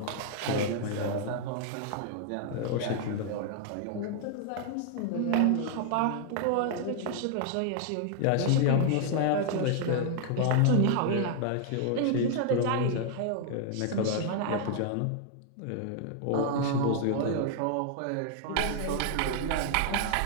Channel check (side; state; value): both; different; correlation 0.00